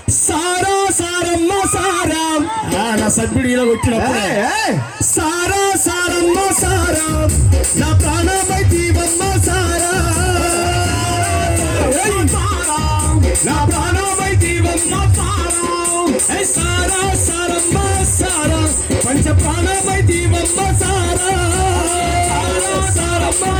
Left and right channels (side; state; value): both; identical; correlation 1.00